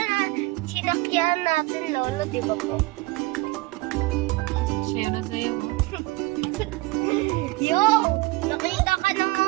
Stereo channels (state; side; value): quieter; left; 22.4 dB